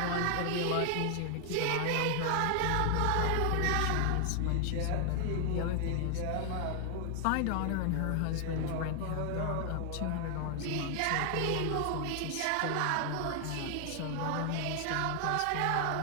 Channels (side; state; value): both; different; correlation 0.00